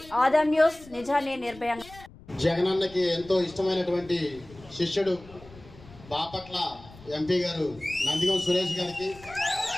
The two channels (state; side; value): noise; left; rumble, 21 dB below the sound